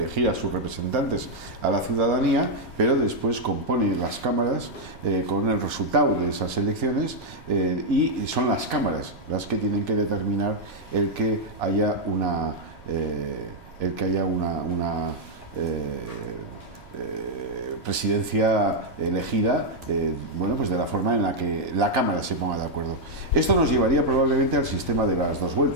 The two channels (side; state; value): right; noise; rumble, 21 dB below the sound